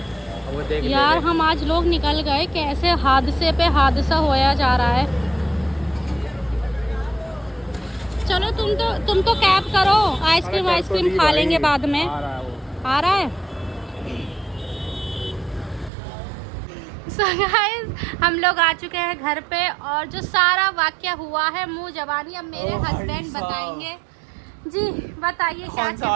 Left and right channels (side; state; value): left; drops out; at 15.9 s